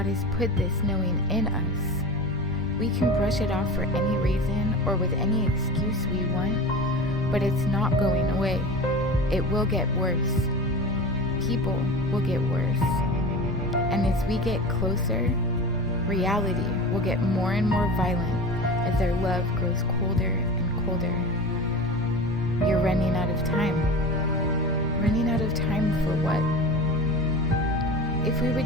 has put this knowing in us. We can brush it off for any reason or with any excuse we want, but it's not going away. It will get worse. People will get worse. And as we get closer, reality will get more and more violent as their love grows colder and colder. You're running out of time. Running out of time for what? If we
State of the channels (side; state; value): both; normal; correlation 0.32